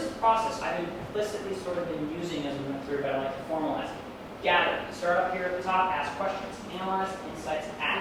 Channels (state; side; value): identical; both; correlation 1.00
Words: process. implicitly sort of been using as we went through, but I like to formalize it. Gather. Start up here at the top, ask questions, analyze, insights,